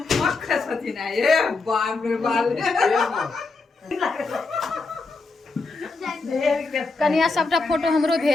कनिया सबटा फोटो हमरो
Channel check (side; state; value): right; quieter; 3.8 dB